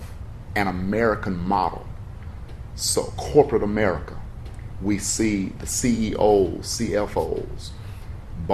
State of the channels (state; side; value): identical; both; correlation 1.00